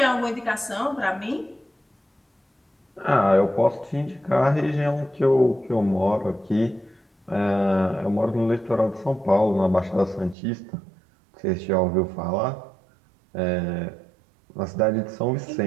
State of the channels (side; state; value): left; drops out; at 10.4 s